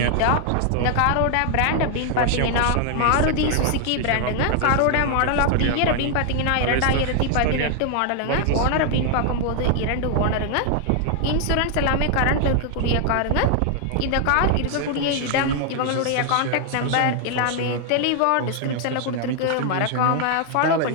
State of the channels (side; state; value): both; different; correlation 0.00